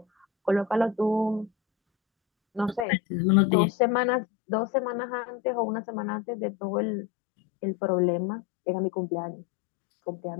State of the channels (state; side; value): drops out; right; at 2.9 s